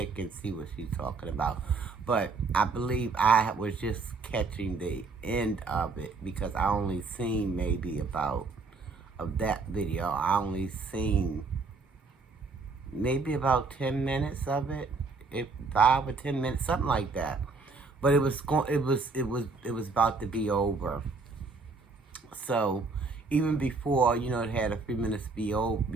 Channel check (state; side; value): quieter; left; 4.1 dB